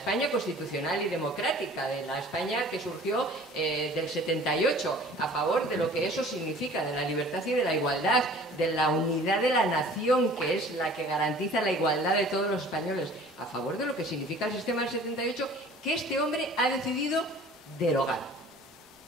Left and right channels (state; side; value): normal; both; correlation 0.47